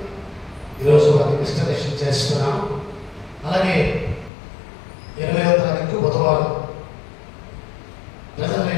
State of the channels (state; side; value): drops out; right; at 4.3 s